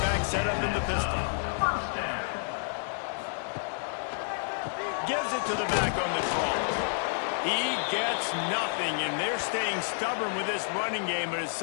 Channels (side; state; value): right; silent; digital silence